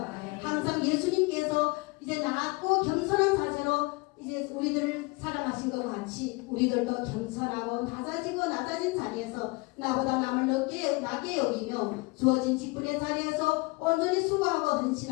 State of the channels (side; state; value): right; quieter; 26.4 dB